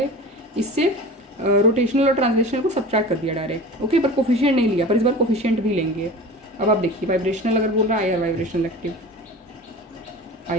इससे रोटेशनल और ट्रांसलेशनल को सब्ट्रैक्ट कर दिया डायरेक्ट, ओके। पर कोफिशिएंट नहीं लिया, पर इस बार कोफिशिएंट भी लेंगे। अब आप देखिए वाइब्रेशनल अगर बोल रहा है IR vibrational active,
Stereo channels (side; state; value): both; normal; correlation 0.36